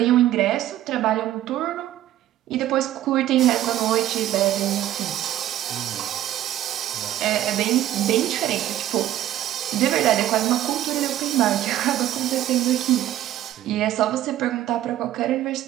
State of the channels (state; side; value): quieter; left; 13.0 dB